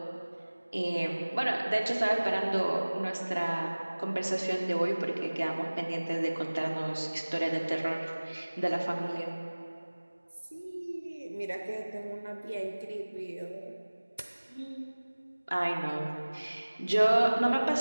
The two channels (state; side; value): inverted; both; correlation -1.00